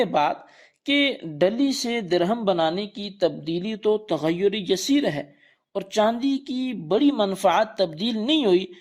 بات کہ ڈلی سے درہم بنانے کی تبدیلی تو تغیر یسیر ہے اور چاندی کی بڑی منفعت تبدیل نہیں ہوئی،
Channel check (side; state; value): both; identical; correlation 1.00